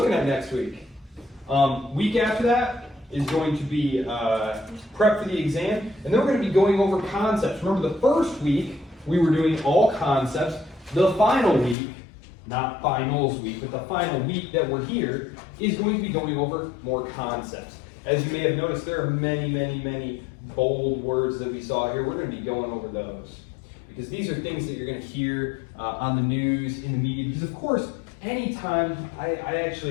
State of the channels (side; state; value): right; drops out; at 11.8 s